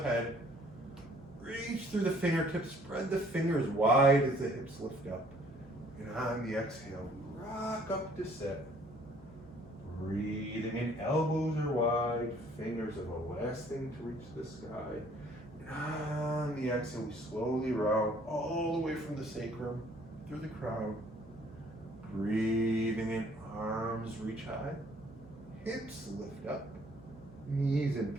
Reach through the fingertips, spread the fingers wide as the hips lift up. And on the exhale, rock up to sit. Breathing in, elbows are wide, fingers are the last thing to reach the sky. And on the exhale, we slowly round all the way from the sacrum through the crown. Breathing in, arms reach high, hips lift up, knees in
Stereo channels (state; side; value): noise; right; hum, 20 dB below the sound